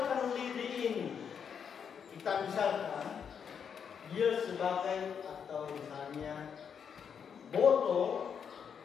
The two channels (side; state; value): right; quieter; 7.2 dB